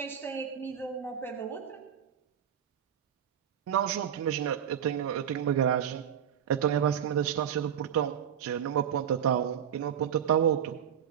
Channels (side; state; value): left; quieter; 9.0 dB